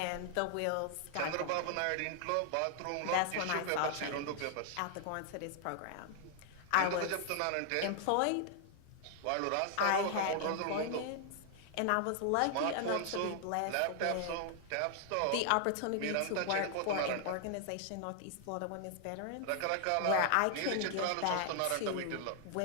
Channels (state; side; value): different; both; correlation 0.00